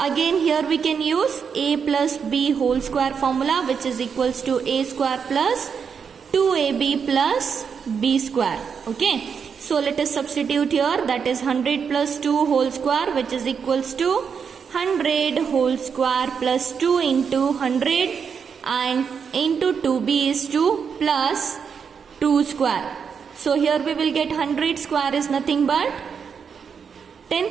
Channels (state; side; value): quieter; left; 6.5 dB